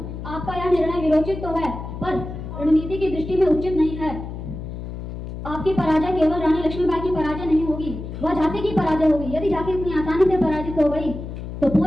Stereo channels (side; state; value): left; noise; hum, 9 dB below the sound